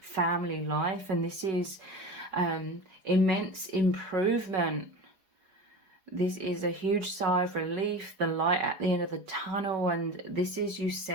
family life, and this is immense improvement. This is a huge sigh of relief, the light at the end of the tunnel, and this is you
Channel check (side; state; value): left; late; 4.8 ms